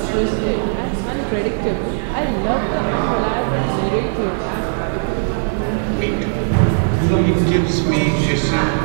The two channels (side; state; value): left; silent; digital silence